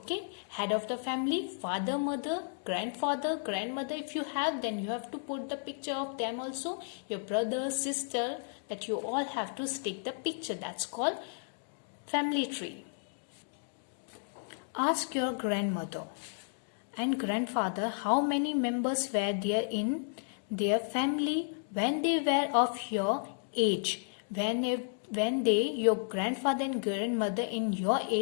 Head of the family, father, mother, grandfather, grandmother. If you have, then you have to put the picture of them also. Your brother, sister, that you all have to stick the picture. That's called family tree. Ask your grandmother and grandfather how many members were there in their family when they were of your age. When your grandfather and grandmother in your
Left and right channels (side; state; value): right; silent; digital silence